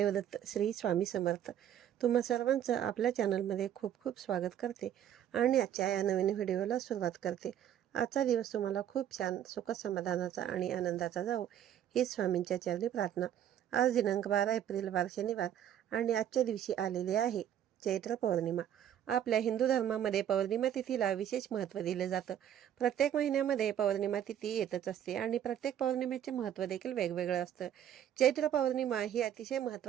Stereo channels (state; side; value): quieter; left; 10.3 dB